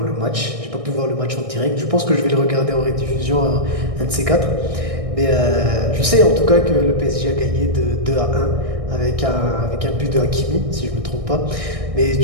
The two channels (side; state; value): left; late; 1.6 ms